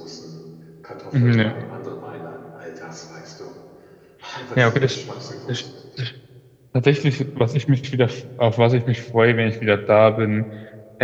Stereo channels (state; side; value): identical; both; correlation 1.00